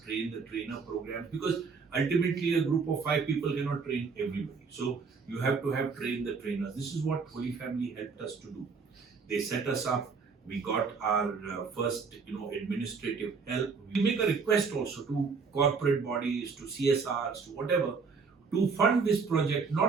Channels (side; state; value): left; quieter; 5.1 dB